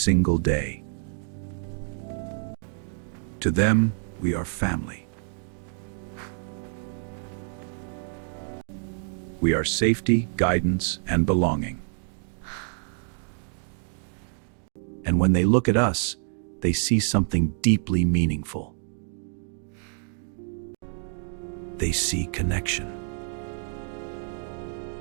day. To them, we are family. We are safety, guidance, and belonging. And when they look at us, they see something deeply meaningful. They see connection.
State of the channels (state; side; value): silent; left; 60 dB below the other